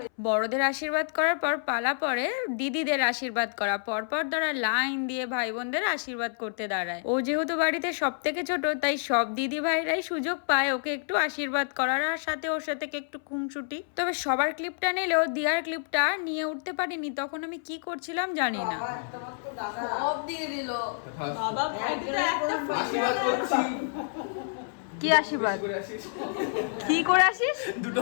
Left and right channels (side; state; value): right; silent; 59 dB below the other